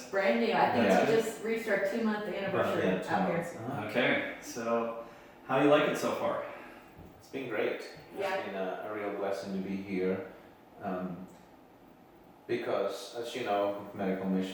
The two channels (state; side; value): identical; both; correlation 1.00